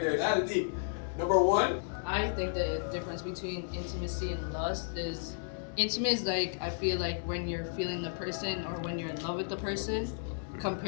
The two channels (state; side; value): silent; right; 56 dB below the other